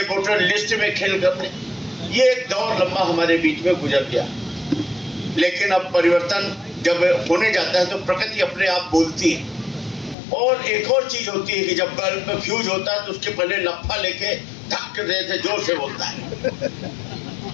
वोटर लिस्ट में खेल करने। ये एक दौर लंबा हमारे बीच में गुजर गया। लेकिन अब परिवर्तन जब होने जाता है तो प्रकृति अपने आप बोलती है। और एक और चीज होती है कि जब बल्ब में फ्यूज होता है तो उसके पहले लफा लेके धक्के देते जोर से बोलता है।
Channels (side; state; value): right; drops out; at 10.2 s